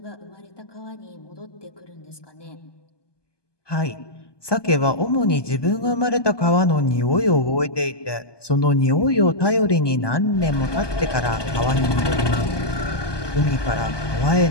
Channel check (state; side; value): late; right; 1.2 ms